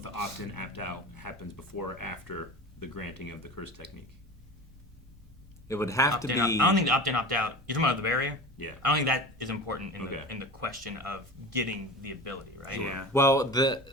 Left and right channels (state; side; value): normal; both; correlation 0.32